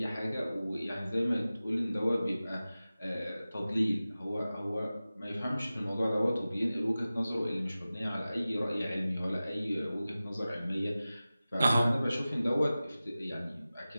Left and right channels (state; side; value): inverted; both; correlation -0.96